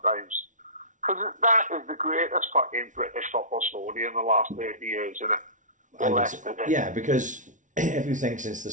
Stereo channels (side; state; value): left; late; 0.37 ms